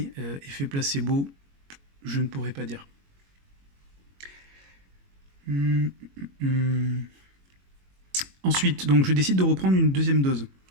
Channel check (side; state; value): left; late; 21 ms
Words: effet placebo, je ne pourrais pas dire. Ensuite, donc je décide de reprendre une deuxième dose.